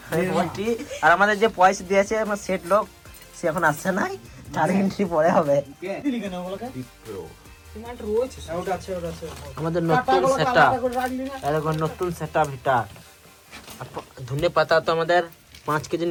বলছি। আর আমাদের যে পয়সা দিয়েছে আমার সেট লোক, সে এখন আসছে নাই, 4 ঘন্টা পরে হবে। আমাদের নতুন সেটআপ, এরকম নতুন সেটআপ এটা। ধনে পাতা তো আমাদের 5 কেজি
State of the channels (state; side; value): identical; both; correlation 1.00